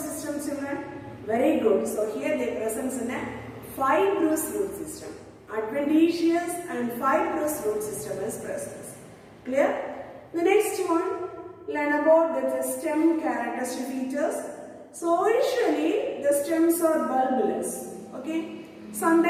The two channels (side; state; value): both; identical; correlation 1.00